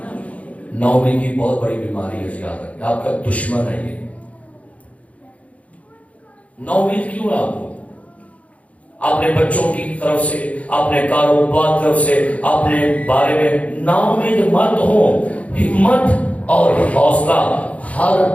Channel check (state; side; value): late; right; 0.066 ms